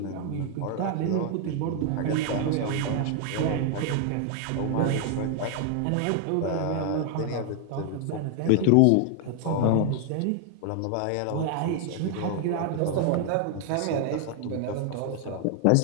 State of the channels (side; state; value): both; different; correlation 0.00